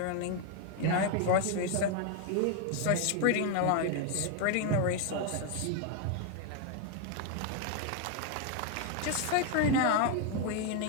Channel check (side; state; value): both; different; correlation 0.01